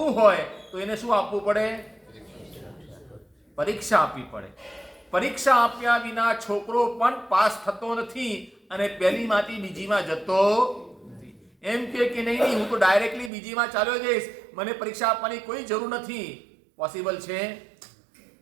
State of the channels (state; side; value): drops out; left; at 13.3 s